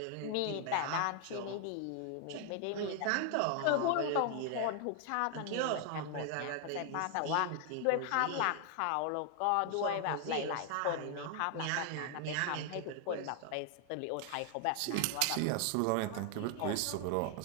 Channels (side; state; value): both; different; correlation 0.00